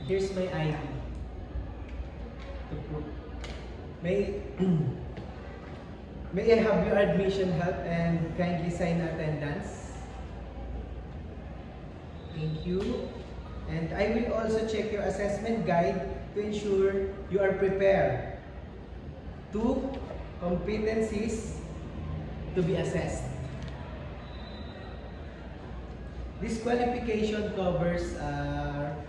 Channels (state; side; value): identical; both; correlation 1.00